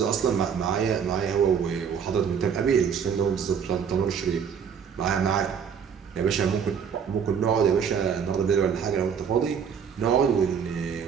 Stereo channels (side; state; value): left; quieter; 7.2 dB